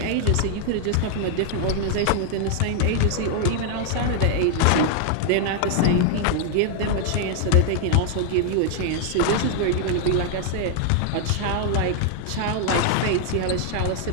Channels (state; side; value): different; both; correlation 0.00